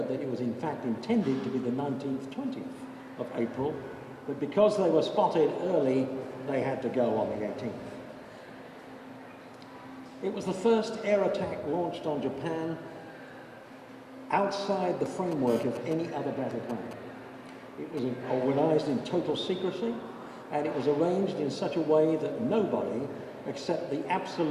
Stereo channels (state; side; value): identical; both; correlation 1.00